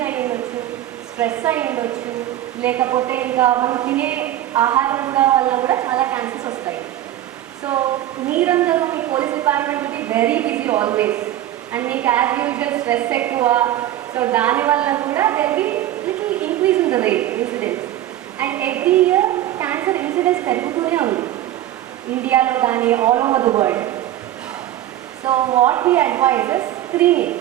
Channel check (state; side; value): quieter; left; 13.1 dB